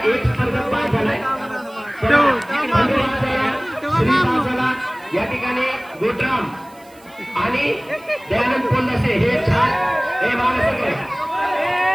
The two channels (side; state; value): right; noise; hiss, 27 dB below the sound